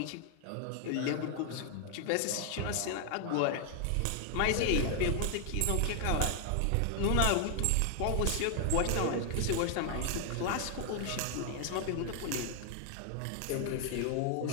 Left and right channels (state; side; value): different; both; correlation 0.00